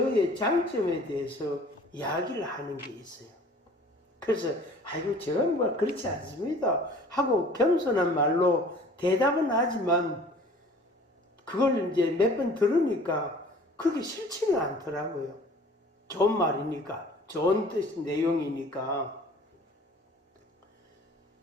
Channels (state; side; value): normal; both; correlation 0.49